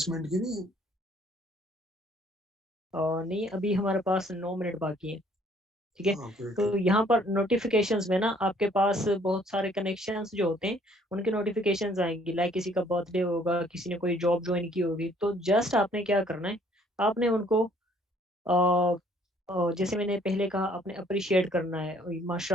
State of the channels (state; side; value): normal; both; correlation 0.61